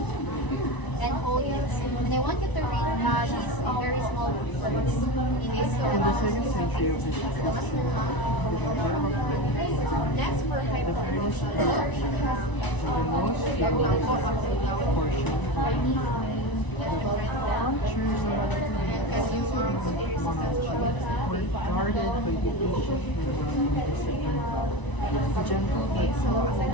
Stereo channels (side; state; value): right; late; 1.0 ms